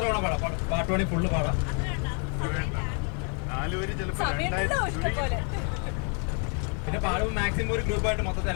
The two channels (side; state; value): right; quieter; 39.9 dB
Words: തവണ പാടാം? പാട്ട് വേണമെങ്കിൽ ഫുള്ള് പാടാം. 4 വരി ചിലപ്പോൾ പിന്നെ പാടുമ്പോൾ മാക്സിമം ഒരു ഗ്രൂപ്പായിട്ട് മൊത്തത്തിൽ,